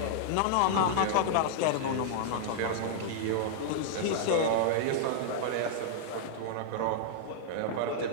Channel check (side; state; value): both; different; correlation -0.01